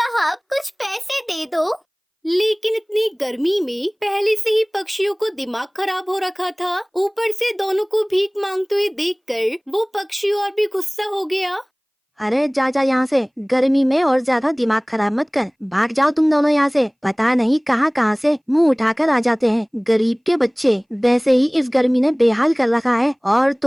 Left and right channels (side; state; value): both; identical; correlation 1.00